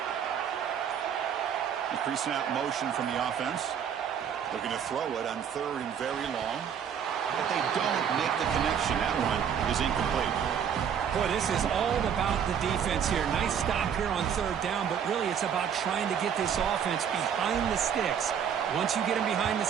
The pre-snap motion from the offense. Looking to throw it on 3rd and very long. But they don't make the connection. That one is incomplete. Boy, this is all about the defense here. Nice stop here on 3rd down, but really it's about trying to get this offense behind the sticks. Once you get him behind the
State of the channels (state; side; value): quieter; left; 8.1 dB